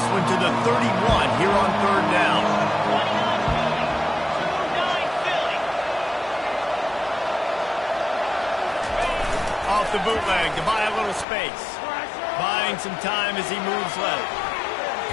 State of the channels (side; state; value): right; drops out; at 11.2 s